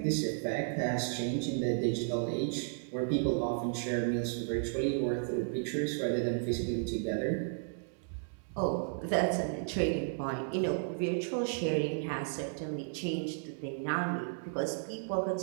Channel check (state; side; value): silent; left; digital silence